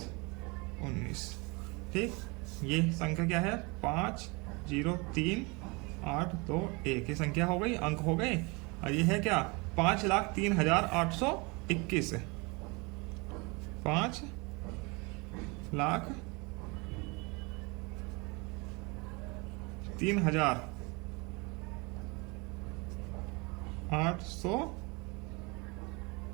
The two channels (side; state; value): left; quieter; 28.1 dB